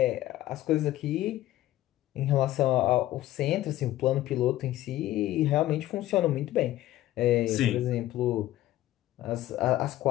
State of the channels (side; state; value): right; quieter; 14.8 dB